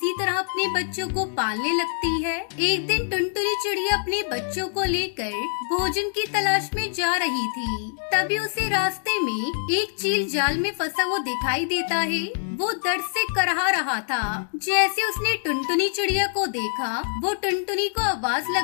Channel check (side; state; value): right; silent; digital silence